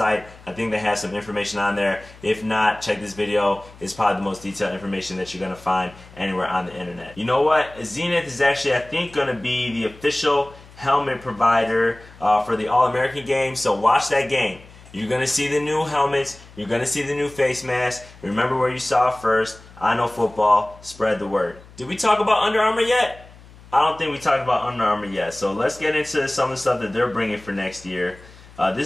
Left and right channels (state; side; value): noise; left; hum, 22 dB below the sound